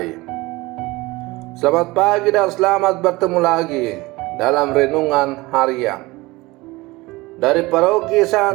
selamat pagi dan selamat bertemu lagi dalam renungan harian dari Paroki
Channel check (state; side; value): quieter; left; 21.4 dB